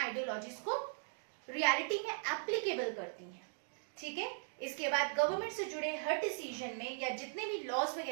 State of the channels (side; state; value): left; silent; digital silence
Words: को रियलिटी में एप्लीकेबल करती हैं, ठीक है। इसके बाद गवर्नमेंट से जुड़े हर डिसीजन में या जितने भी लॉज